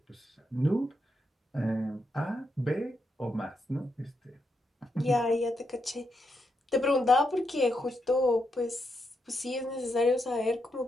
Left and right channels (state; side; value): normal; both; correlation 0.82